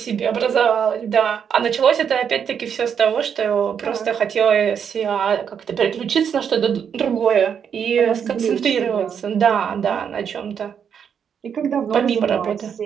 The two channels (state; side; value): quieter; left; 7.6 dB